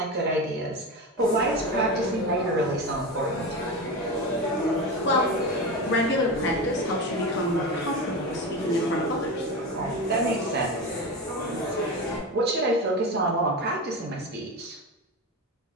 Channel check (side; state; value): both; normal; correlation 0.22